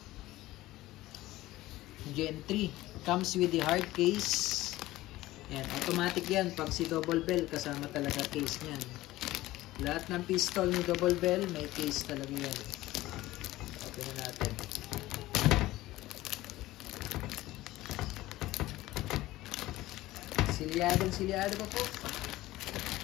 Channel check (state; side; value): quieter; right; 17.0 dB